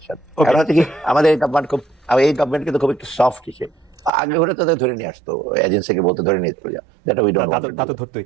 কারণ হচ্ছে কি, আমাদের এই গভর্নমেন্ট কিন্তু খুব একটু সফট হিসেবে, আগে ওরা তো ধরে নিয়ে আসতো, এজেন্সিকে বলতে ধরে নিয়ে চলে যাও।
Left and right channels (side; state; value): left; drops out; at 4.1 s